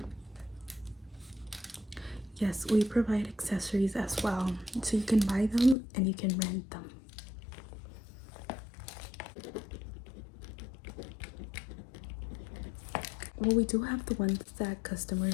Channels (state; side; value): drops out; right; at 5.8 s